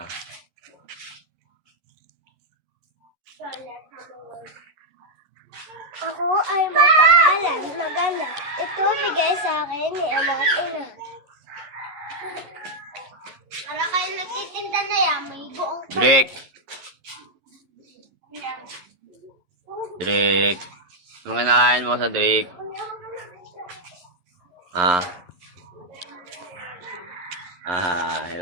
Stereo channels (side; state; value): left; late; 11 ms